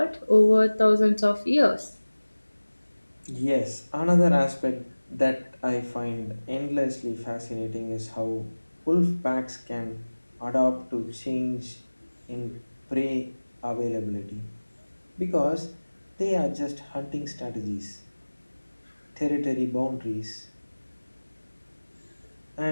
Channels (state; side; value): inverted; both; correlation -1.00